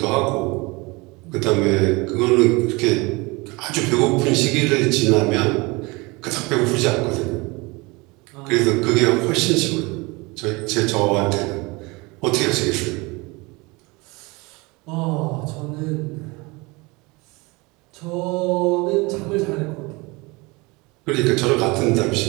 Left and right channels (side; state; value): left; quieter; 25.3 dB